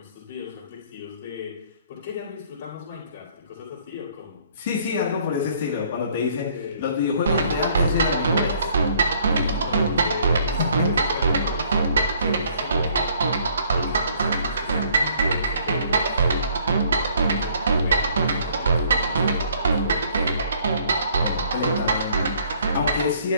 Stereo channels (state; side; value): inverted; both; correlation -0.61